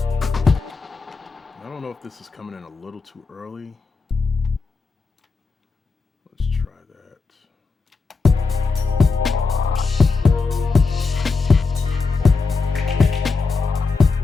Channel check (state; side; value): quieter; right; 4.4 dB